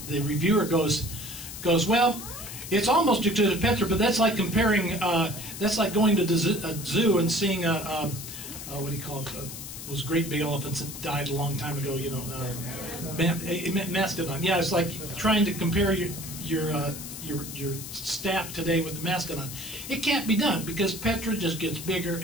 the reviewer goes, well, it's almost as good as Petra, but that's like comparing, that's like going to a zoo and seeing what do you call it? Those great big elephants that died a long time ago, you know, mastodon. Yeah, it's like trying to compare your staff today with the mastodon. It can't be done because Petra just gets bigger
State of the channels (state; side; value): noise; left; hiss, 10 dB below the sound